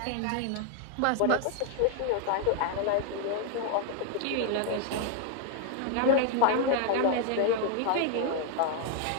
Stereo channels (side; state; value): both; different; correlation 0.00